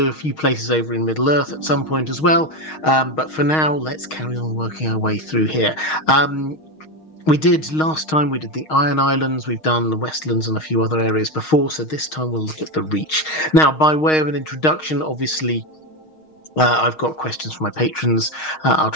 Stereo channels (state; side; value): late; right; 6.4 ms